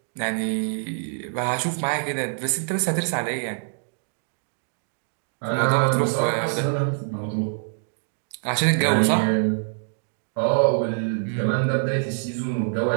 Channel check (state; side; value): silent; left; digital silence